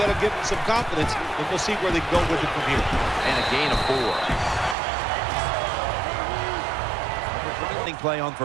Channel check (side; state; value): left; drops out; at 4.8 s